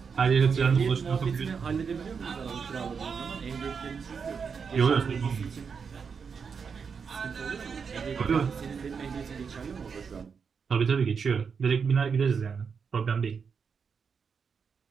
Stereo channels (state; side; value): quieter; left; 6.0 dB